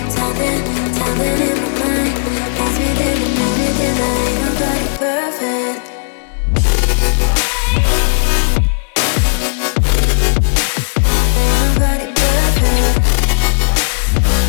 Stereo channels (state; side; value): silent; right; digital silence